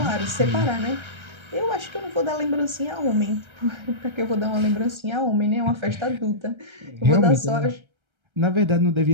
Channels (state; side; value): late; left; 1.3 ms